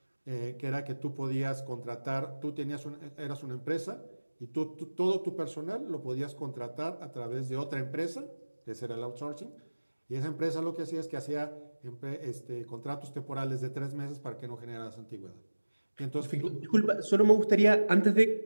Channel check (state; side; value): inverted; both; correlation -1.00